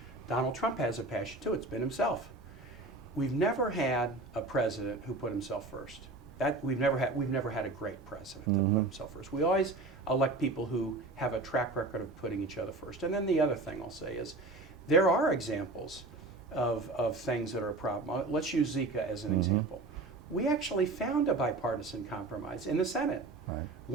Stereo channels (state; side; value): quieter; left; 3.2 dB